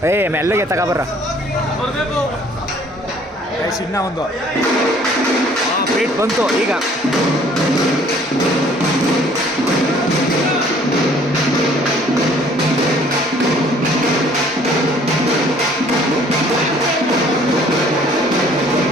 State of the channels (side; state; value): both; normal; correlation 0.57